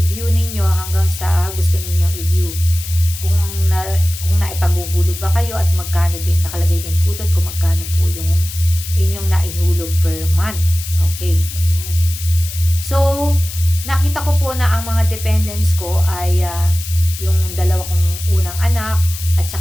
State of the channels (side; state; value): left; noise; hiss, 10 dB below the sound